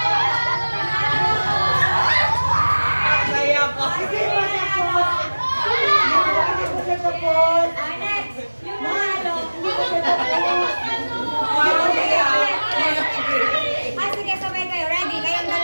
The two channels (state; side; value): inverted; both; correlation -1.00